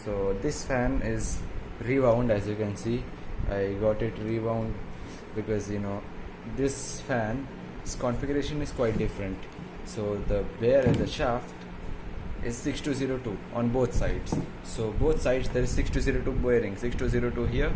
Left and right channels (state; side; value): identical; both; correlation 1.00